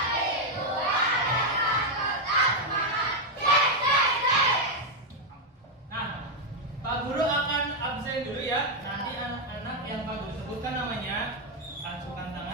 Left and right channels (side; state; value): both; normal; correlation 0.02